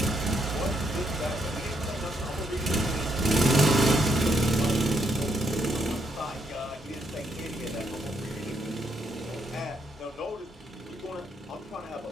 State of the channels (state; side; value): normal; both; correlation 0.75